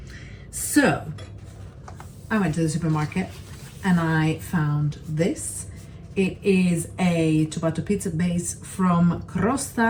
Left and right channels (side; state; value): both; identical; correlation 1.00